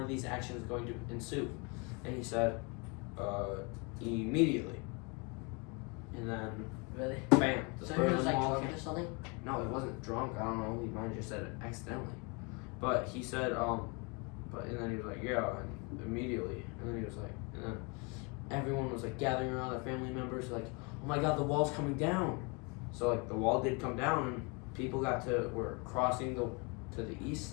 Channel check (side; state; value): right; quieter; 31.2 dB